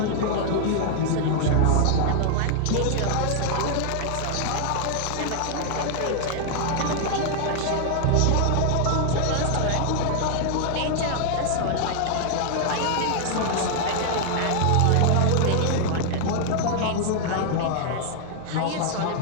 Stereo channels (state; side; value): different; both; correlation 0.00